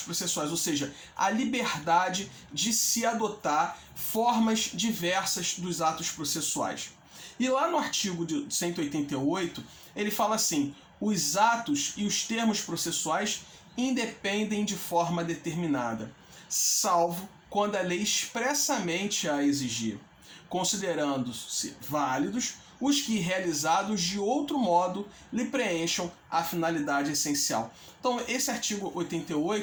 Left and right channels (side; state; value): both; identical; correlation 1.00